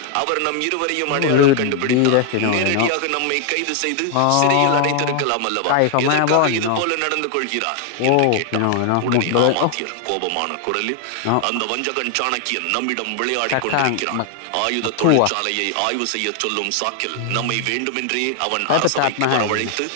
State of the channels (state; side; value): different; both; correlation 0.00